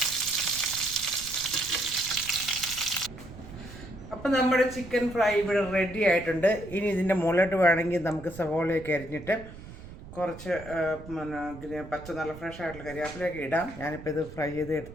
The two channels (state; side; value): noise; right; rumble, 15 dB below the sound